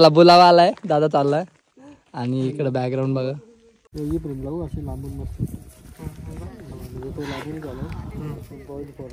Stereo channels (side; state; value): both; identical; correlation 1.00